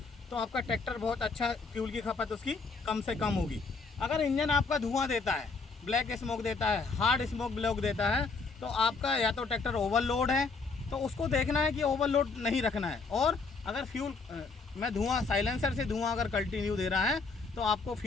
तो आपका ट्रैक्टर बहुत अच्छा, फ्यूल की खपत उसकी कम से कम होगी। अगर इंजन आपका धुआं देता है, ब्लैक स्मोक देता है, हार्ड स्मोक ब्लॉक देता है, तो आपका या तो ट्रैक्टर ओवरलोड है, तो उसको देखना है कि ओवरलोड नहीं रखना है। और अगर फ्यूल में धुआं, साइलेंसर से धुआं अगर कंटिन्यू दे रहा है तो आपको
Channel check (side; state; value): right; quieter; 4.3 dB